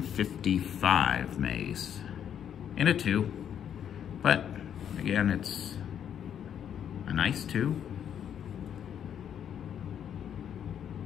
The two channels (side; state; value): right; quieter; 9.1 dB